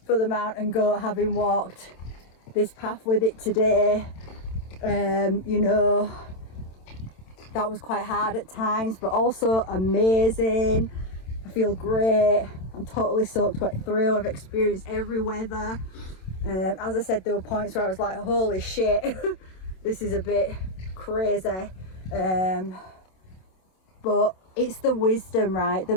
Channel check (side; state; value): right; late; 27 ms